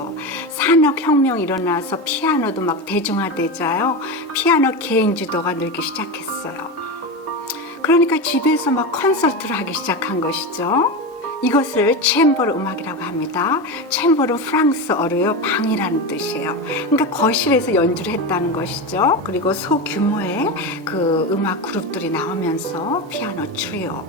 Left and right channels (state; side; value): normal; both; correlation 0.19